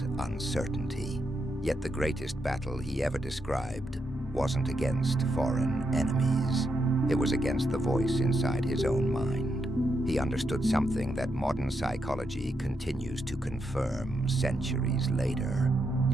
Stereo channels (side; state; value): both; normal; correlation 0.82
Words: uncertainty. Yet the greatest battle he ever described wasn't against foreign enemies. It was against the voice inside his own mind. He understood something that modern psychology continues to confirm centuries later.